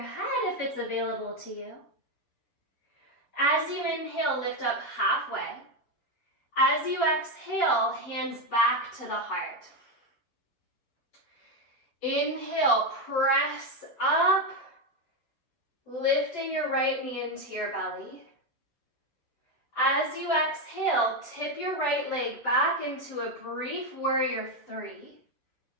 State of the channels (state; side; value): late; right; 7.1 ms